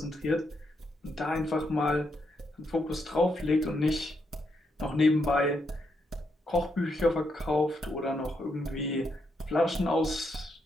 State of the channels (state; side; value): normal; both; correlation 0.80